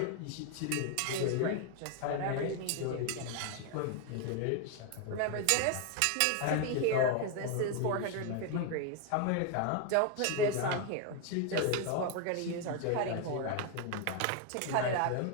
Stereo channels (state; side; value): different; both; correlation 0.01